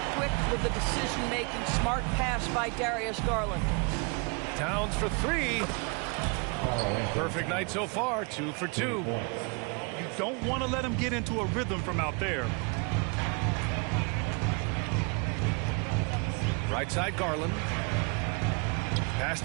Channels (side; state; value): left; quieter; 32.7 dB